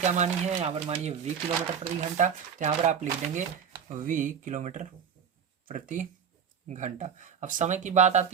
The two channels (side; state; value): left; quieter; 7.4 dB